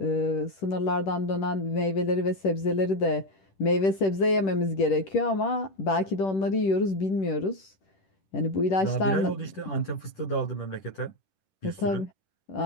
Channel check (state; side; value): late; right; 10 ms